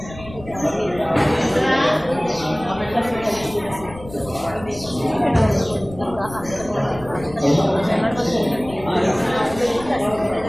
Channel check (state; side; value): noise; left; rumble, 16 dB below the sound